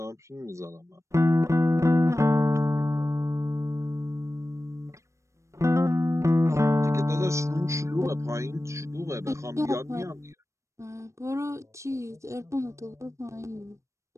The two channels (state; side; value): late; left; 0.14 ms